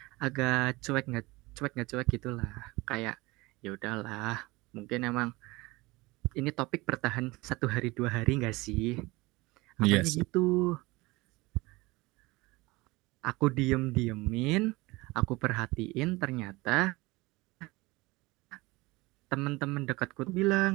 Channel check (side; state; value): left; quieter; 22.3 dB